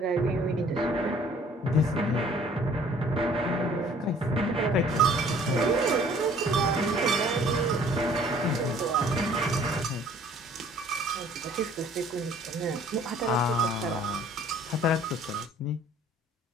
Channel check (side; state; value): both; normal; correlation 0.55